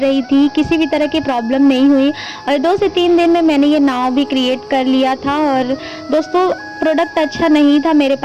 थी, किसी भी तरह की प्रॉब्लम नहीं हुई। और 2 से 3 दिन में मैंने ये नाव भी क्रिएट कर लिया था। और दोस्तों प्रोडक्ट अच्छा नहीं था मेरे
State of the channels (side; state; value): both; identical; correlation 1.00